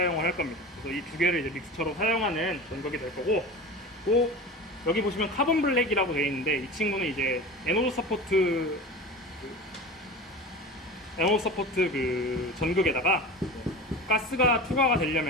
할 겁니다. 그래서 이 두 개를 이제 믹스처로 사용하는 전극이 될 거고, 또 여기 보시면 카본 블랙이라고 되어 있는데, 이 친구는 이제 에노드 서포트 그 전극에다가 가스가 투과가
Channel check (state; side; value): normal; both; correlation 0.32